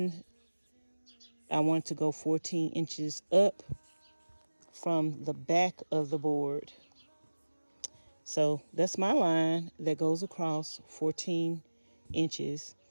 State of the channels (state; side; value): inverted; both; correlation -1.00